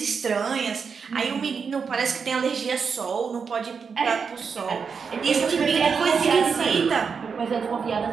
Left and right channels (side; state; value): left; quieter; 5.8 dB